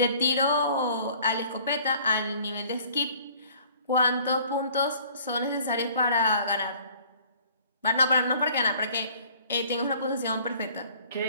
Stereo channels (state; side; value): inverted; both; correlation -0.53